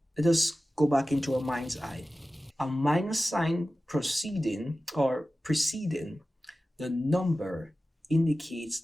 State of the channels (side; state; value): both; normal; correlation 0.95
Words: let us go back into our mind's eye. A minus sign preceding the number indicates